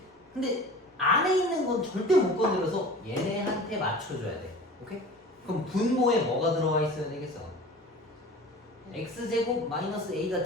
근데 안에 있는 건 절대 못 건드려서 얘네한테 맞춰줘야 돼. 오케이? 그럼 분모에 뭐가 들어와 있어야 되겠어? x제곱 마이너스 a가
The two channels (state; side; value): normal; both; correlation 0.40